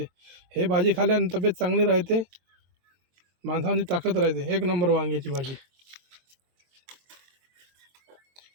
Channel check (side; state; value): left; late; 23 ms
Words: हे भाजी खाल्ल्याने तब्येत चांगली राहते, माणसाची ताकद राहते. एक नंबर वांग्याची भाजी.